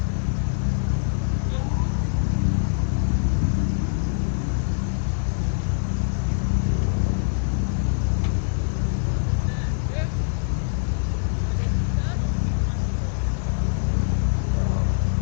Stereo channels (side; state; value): right; silent; digital silence